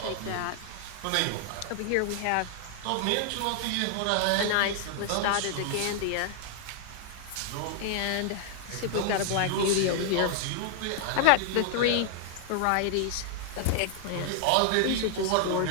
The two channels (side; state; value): both; different; correlation 0.00